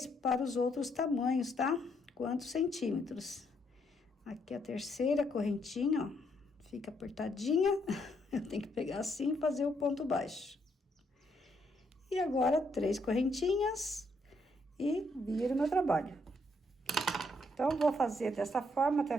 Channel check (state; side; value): normal; both; correlation 0.73